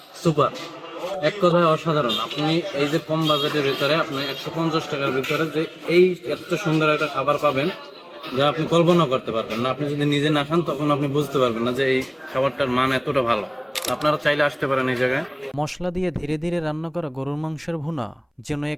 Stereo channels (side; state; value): both; identical; correlation 1.00